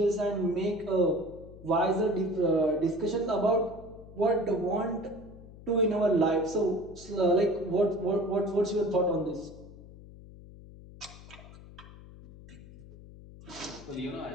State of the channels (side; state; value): left; noise; hum, 18 dB below the sound